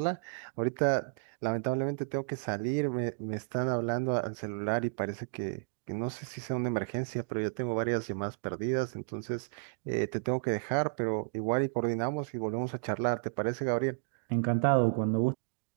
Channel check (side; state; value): left; silent; digital silence